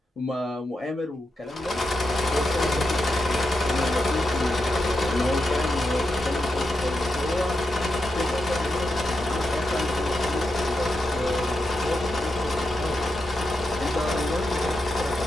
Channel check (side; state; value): both; normal; correlation 0.86